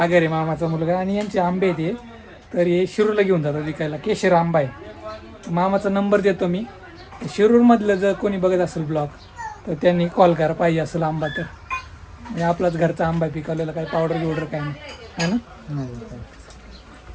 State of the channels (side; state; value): both; identical; correlation 1.00